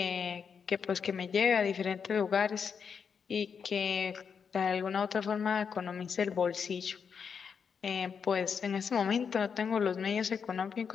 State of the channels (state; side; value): quieter; right; 6.5 dB